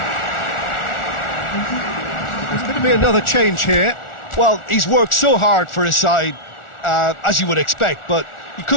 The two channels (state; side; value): late; right; 1.4 ms